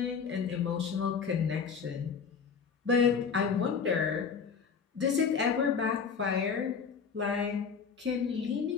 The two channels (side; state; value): right; quieter; 6.1 dB